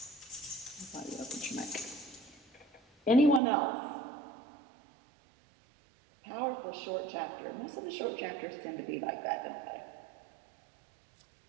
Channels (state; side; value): drops out; left; at 3.4 s